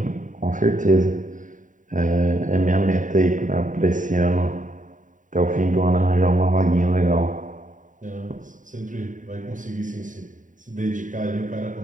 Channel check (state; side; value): late; left; 0.37 ms